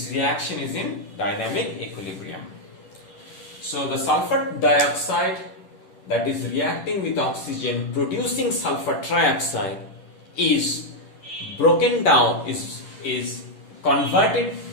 reaction is in dynamic equilibrium. So the sulfur dioxide that is reacting with oxygen producing sulfur trioxide is broken down, is converted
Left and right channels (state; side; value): late; right; 10 ms